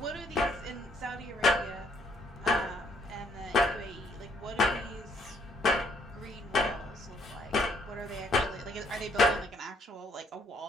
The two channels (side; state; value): both; normal; correlation 0.68